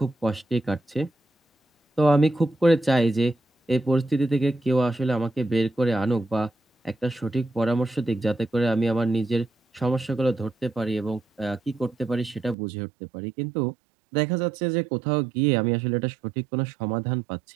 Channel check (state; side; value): drops out; left; at 12.6 s